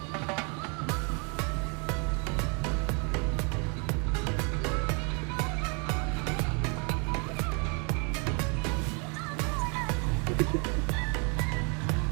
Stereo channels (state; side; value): quieter; left; 34.9 dB